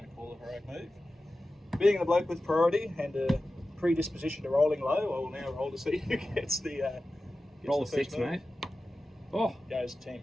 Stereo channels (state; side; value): normal; both; correlation 0.94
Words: call a heroic move. Being the bloke with priority and a predisposition to rolling low, I will now roll to see who gets the Roll a gets the 6, first move. mate. Oh, Goes 10,